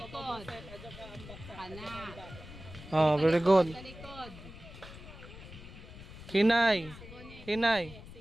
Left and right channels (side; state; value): left; noise; rumble, 15 dB below the sound